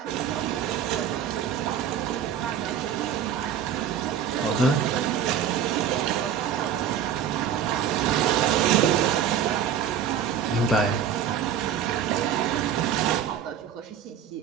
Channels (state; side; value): quieter; left; 8.6 dB